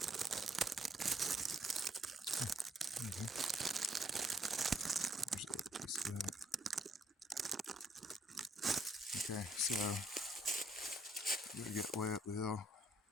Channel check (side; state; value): both; normal; correlation 0.69